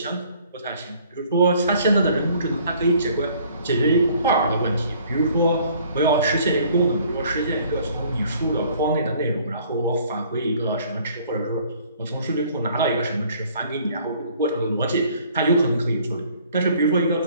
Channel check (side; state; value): both; inverted; correlation -0.58